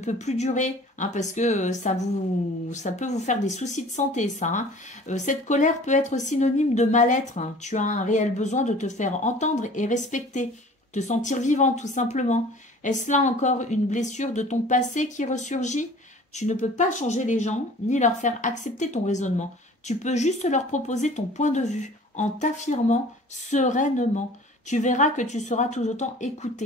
plus durer hein, parce que ça peut vous faire des soucis de santé, ça. Hein. Cette colère peut être synonyme de mal-être. Hein. Tu as un réel besoin de te faire entendre et respecter, te sentir vivant tout simplement. Est-ce là encore une blessure de ton passé qui ressurgit? Tu ne peux pas changer les gens ni leur faire accepter ton raisonnement. Tu peux juste leur proposer ton point de vue en t'affirmant sereinement. Tu verras que tu seras tout autant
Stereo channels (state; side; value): normal; both; correlation 0.47